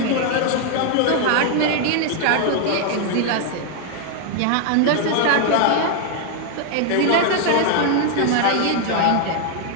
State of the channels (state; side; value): different; both; correlation 0.00